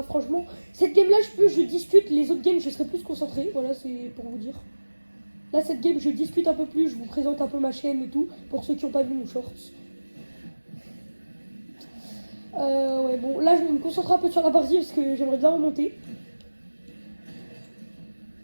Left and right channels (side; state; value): both; inverted; correlation -1.00